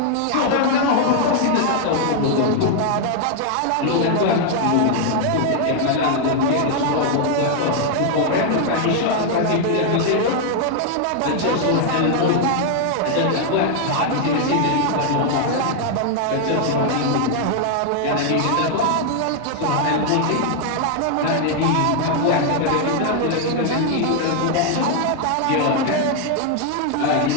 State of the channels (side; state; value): both; different; correlation 0.00